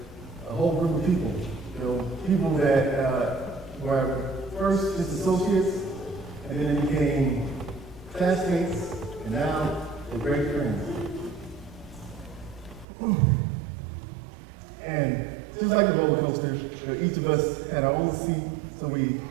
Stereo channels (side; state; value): left; drops out; at 12.9 s